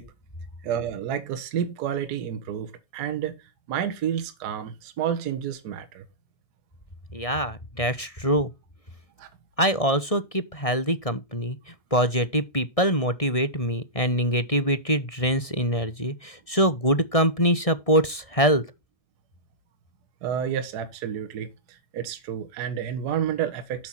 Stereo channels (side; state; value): right; late; 1.6 ms